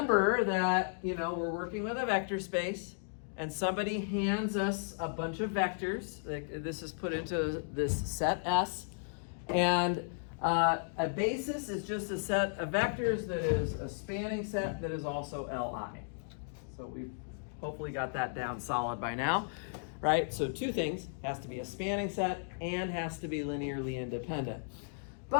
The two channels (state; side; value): silent; right; digital silence